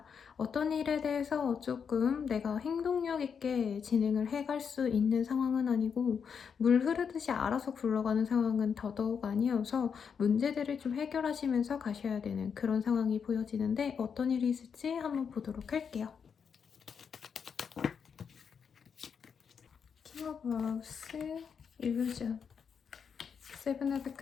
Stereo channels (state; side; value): quieter; right; 6.7 dB